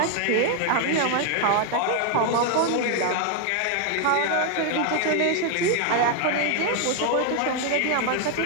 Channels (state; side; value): different; both; correlation 0.00